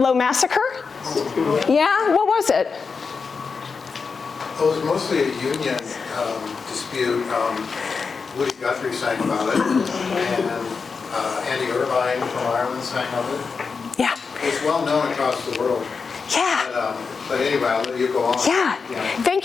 Massacre? Yeah, what was it? It was mostly a union dispute. Woody Guthrie sang about it, and Andy Irvine from Ireland sang of it. Yeah. It's well known across the world. Yeah. But anyway, I'll let you go on. Yeah,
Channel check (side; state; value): right; quieter; 5.1 dB